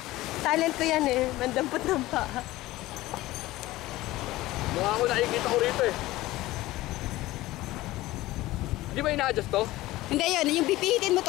Talent ko yan eh. Mandampot ng paa. Mukha ko nakikita ko rito eh. Hindi ba ina-adjust to? Hindi yun, yung pipihitin mo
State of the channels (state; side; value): quieter; right; 17.6 dB